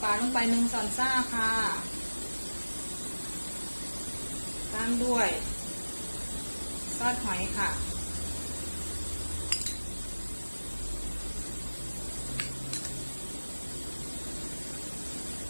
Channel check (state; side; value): inverted; both; correlation -1.00